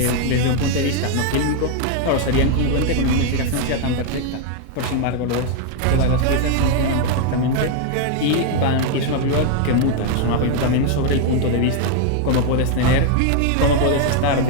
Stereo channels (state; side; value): different; both; correlation 0.00